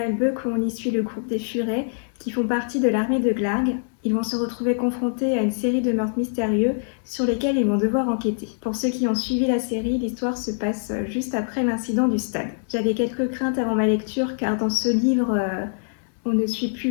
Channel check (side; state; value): right; silent; digital silence